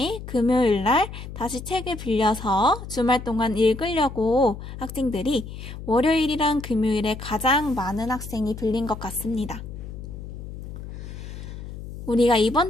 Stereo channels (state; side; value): noise; left; hum, 11 dB below the sound